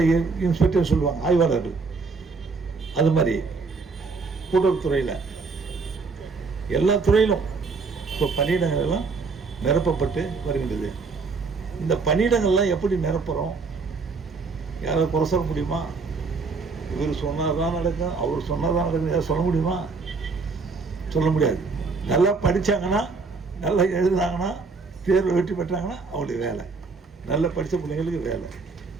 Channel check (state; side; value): quieter; left; 4.4 dB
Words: இன்ஸ்பெக்டர் சொல்லுவாங்க, ஆய்வாளர்கள், அது மாதிரி கூட்டுறவுத்துறையில் எல்லா துறையிலும் இப்போ பணியிடங்கள் எல்லாம் நிரப்பப்பட்டு வருகின்றது. இந்த பணியிடங்கள்லாம் எப்படி நிரப்புகிறோம்? யாராவது குறை சொல்ல முடியுமா? இவர் சொன்னால் தான் நடக்கும், அவர் சொன்னால் தான் நடக்கும், யாரும் சொல்ல முடியுமா? சொல்ல முடியாது. நல்லா படித்தாங்கன்னா, நல்லா எழுதுனாங்கன்னா, தேர்வு வெற்றி பெற்றாங்கன்னா அவங்களுக்கு வேலை. நல்லா படித்த பிள்ளைங்களுக்கு வேலை.